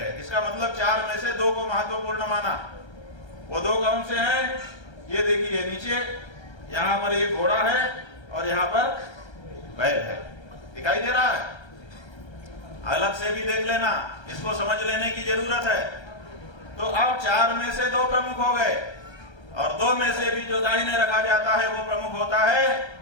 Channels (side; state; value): right; late; 1.3 ms